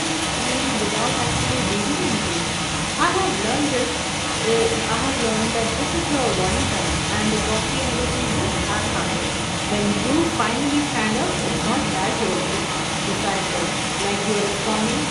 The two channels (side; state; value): both; identical; correlation 1.00